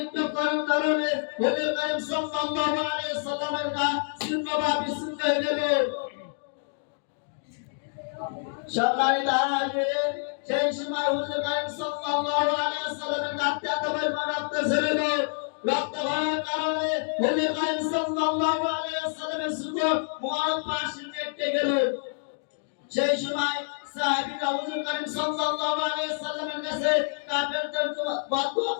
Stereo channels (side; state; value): right; silent; digital silence